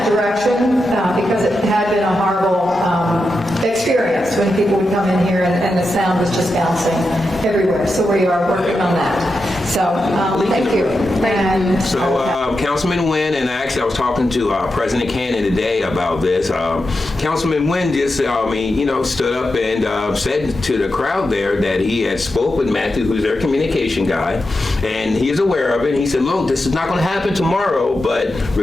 direction because it had been a horrible experience when people would come in here and the sound was just bouncing everywhere. So we are working on that. So thank you. And, Councilman Wynn, and actually I was talking to President Cannon today about this. Councilman Wynn just, stood up and said to the crowd there that he had spoke with Matthew, who's their communication guy, and he is aware of it. And he said, look, this is not going to happen tomorrow, but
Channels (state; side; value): normal; both; correlation 0.89